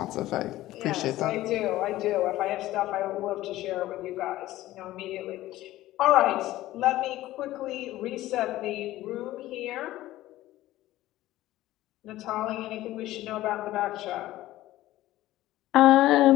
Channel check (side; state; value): right; quieter; 15.7 dB